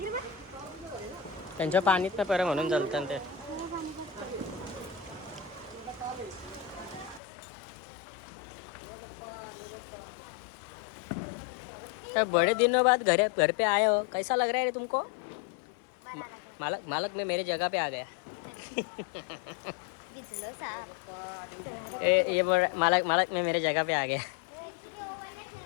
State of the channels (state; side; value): drops out; right; at 7.2 s